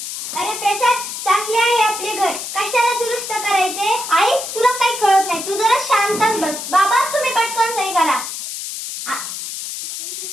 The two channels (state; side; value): noise; left; hiss, 7 dB below the sound